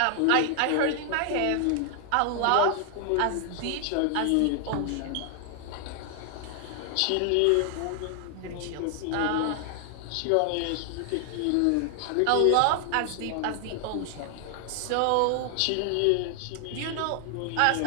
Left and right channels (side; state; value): both; different; correlation 0.00